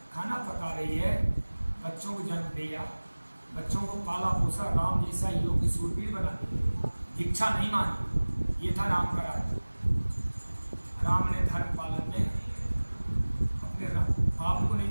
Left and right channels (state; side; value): inverted; both; correlation -1.00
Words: खाना पका रही है, बच्चों को जन्म दिया, बच्चों को पाला पोसा, राम जैसा योग्य सूरवीर बना दिया, दीक्षा नहीं मानी। ये था राम का राज। राम ने धर्म पालन में अपने बाप को नहीं